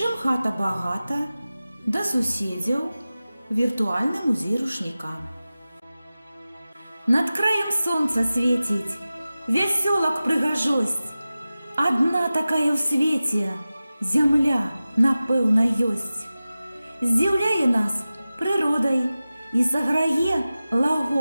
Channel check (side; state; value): both; inverted; correlation -0.95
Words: хата багата», «Да суседзяў», «Віртуальны музей рушніка». Над краем сонца свеціць, вясёлак прыгажосць. Адна такая ў свеце, зямля, напэўна, ёсць. Здзіўляе нас прыродай і саграе